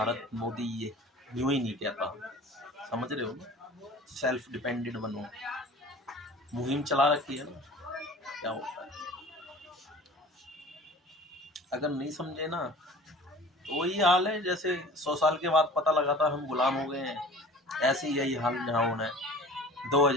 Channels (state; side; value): normal; both; correlation 0.43